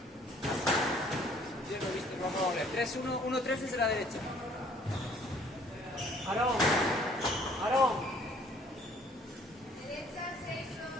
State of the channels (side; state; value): both; normal; correlation 0.58